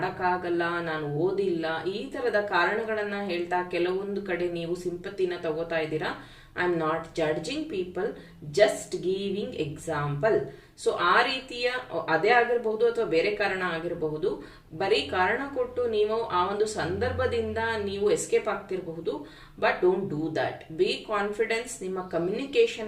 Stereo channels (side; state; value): both; identical; correlation 1.00